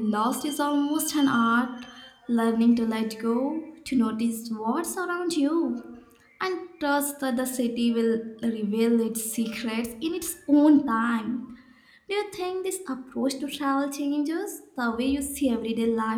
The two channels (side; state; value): both; identical; correlation 1.00